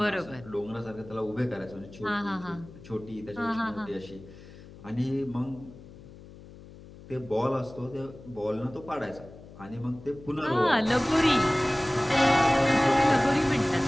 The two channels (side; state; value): left; noise; hum, 18 dB below the sound